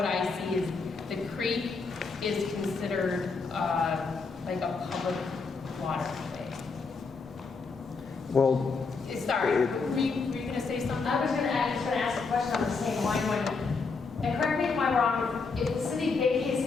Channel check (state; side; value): quieter; right; 4.5 dB